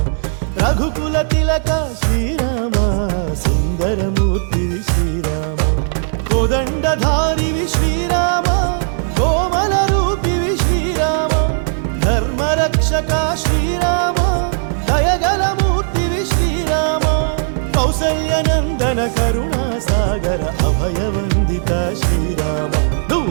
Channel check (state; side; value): silent; left; 68 dB below the other